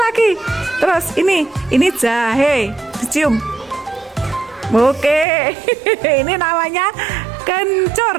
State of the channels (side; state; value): left; drops out; at 5.2 s